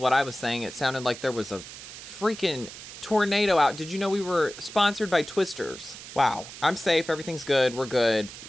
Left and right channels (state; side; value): noise; right; hiss, 13 dB below the sound